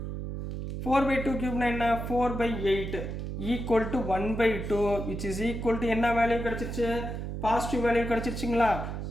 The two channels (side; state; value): right; noise; hum, 5 dB below the sound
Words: 4/2³ என்ன? 4/8 equal to 1/2 which is equal to என்ன வேல்யூ கிடச்சிருச்சு? பாசிட்டிவ் வேல்யூ கிடச்சிருச்சுங்களா?